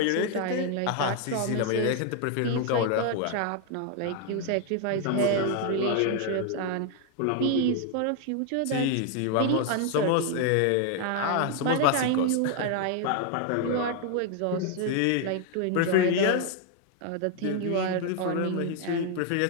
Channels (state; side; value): different; both; correlation 0.00